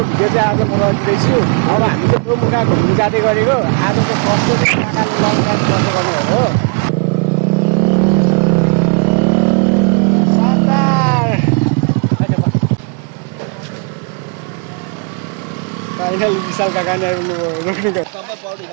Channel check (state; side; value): quieter; left; 36.9 dB